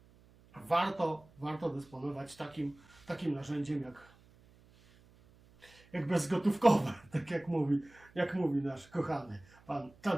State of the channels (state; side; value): noise; right; hum, 27 dB below the sound